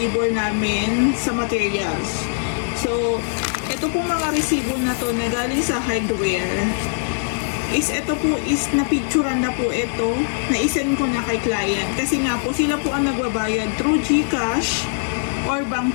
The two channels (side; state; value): right; silent; digital silence